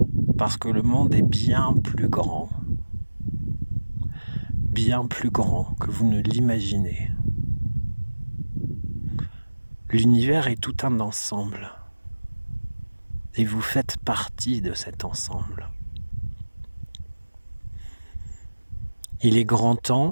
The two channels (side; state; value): both; inverted; correlation -1.00